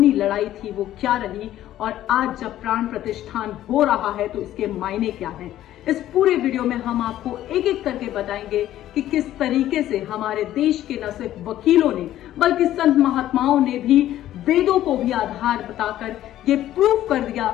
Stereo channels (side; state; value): right; quieter; 13.1 dB